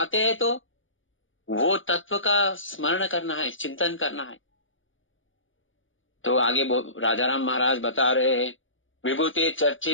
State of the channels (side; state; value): right; late; 0.57 ms